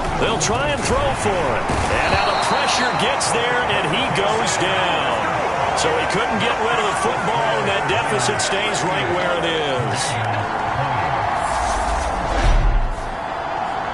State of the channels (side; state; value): both; identical; correlation 1.00